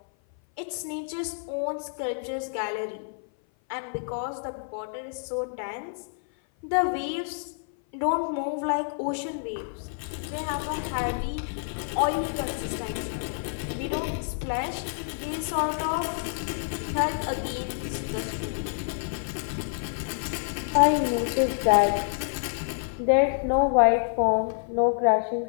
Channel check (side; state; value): right; silent; 56 dB below the other